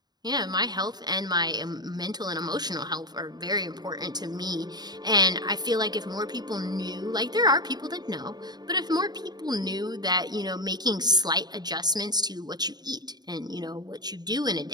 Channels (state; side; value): late; left; 0.20 ms